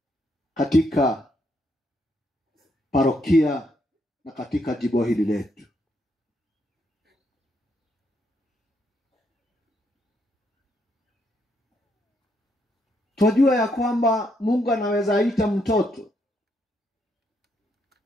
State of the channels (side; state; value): both; normal; correlation 0.76